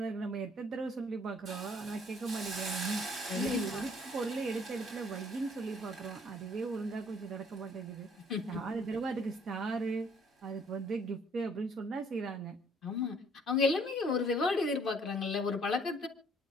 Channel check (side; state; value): both; normal; correlation 0.61